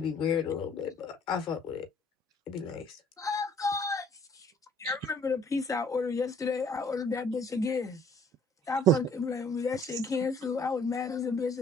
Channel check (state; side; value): normal; both; correlation 0.59